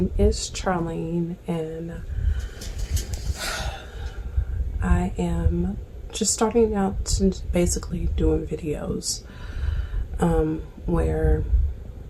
is Charlene, and I am just starting out to basically doing videos where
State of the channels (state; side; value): identical; both; correlation 1.00